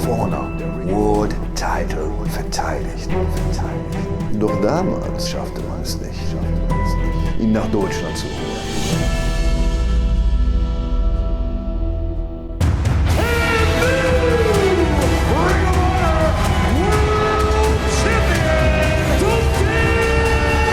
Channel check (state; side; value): identical; both; correlation 1.00